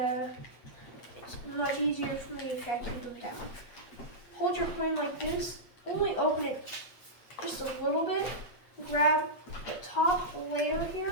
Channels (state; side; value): late; right; 8.2 ms